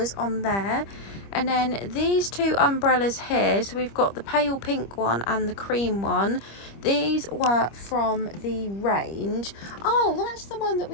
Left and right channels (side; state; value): right; late; 25 ms